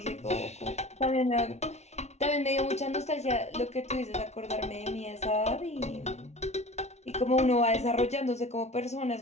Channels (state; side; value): late; right; 0.32 ms